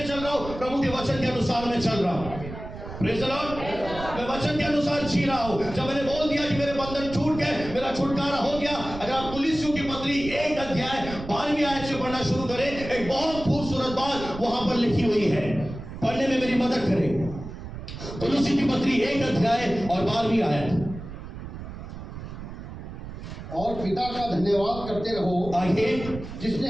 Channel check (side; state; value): right; noise; rumble, 11 dB below the sound